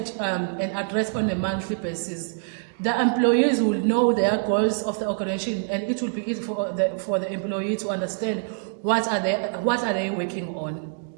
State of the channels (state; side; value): silent; left; digital silence